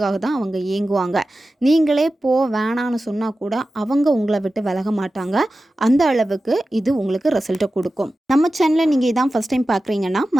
தான் அவங்க ஏங்குவாங்க. நீங்களே வேணான்னு சொன்னால் கூட அவங்க உங்களை விட்டு விலக மாட்டாங்க. அந்த அளவுக்கு இது உங்களுக்கு ரிசல்ட்டை கொடுக்கும். நம்ம சேனலில் நீங்கள் இதான் ஃபஸ்ட் டைம் பார்க்குறீங்கன்னா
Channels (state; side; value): normal; both; correlation 0.94